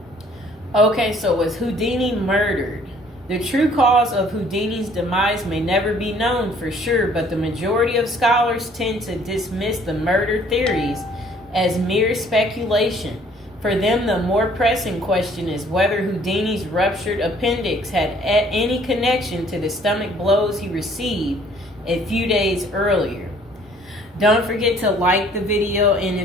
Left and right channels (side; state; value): both; normal; correlation 0.58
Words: Okay, so was Houdini murdered? The true cause of Houdini's demise may never be known for sure, but the majority of scholars tend to dismiss the murder theories as mere speculation. For them, the more pressing question is whether Houdini's ruptured appendix had any connection to the stomach blows he received a few days earlier. Don't forget to like the video, and